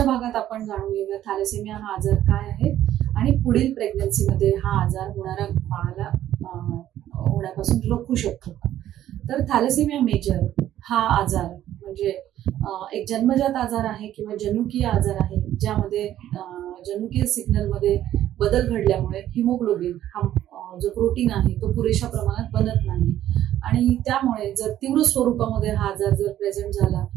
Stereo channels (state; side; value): quieter; left; 12.3 dB